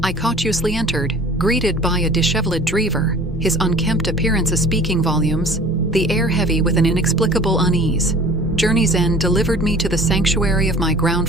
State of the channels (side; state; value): both; normal; correlation 0.46